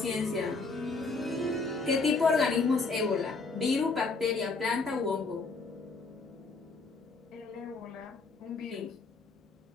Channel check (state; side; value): quieter; right; 4.0 dB